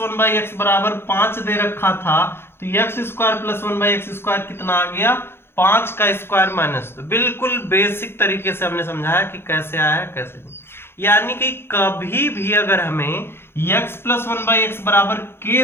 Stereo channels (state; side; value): late; right; 0.11 ms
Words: by x बराबर 5 दे रखा था तो x square plus one by x square कितना आ गया? 5 का स्क्वायर माइनस 2। बिल्कुल बेसिक तरीके से हमने समझाया कि कैसे आया है कैसे नहीं। यानी कि कभी भी अगर हमें x plus one by x बराबर k